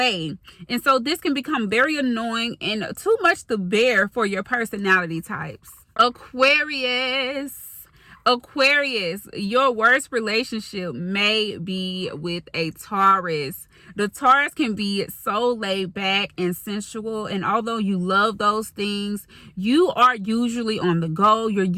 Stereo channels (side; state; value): both; identical; correlation 1.00